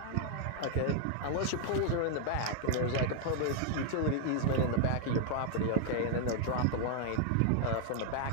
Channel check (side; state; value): both; different; correlation 0.00